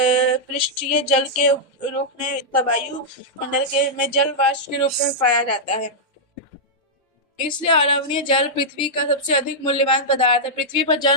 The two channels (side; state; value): both; normal; correlation -0.08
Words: जल के रूप में वायु मंडल में जल वाष्प के रूप में पाया जाता है। इसलिए अलवणीय जल पृथ्वी का सबसे अधिक मूल्यवान पदार्थ है। पृथ्वी पर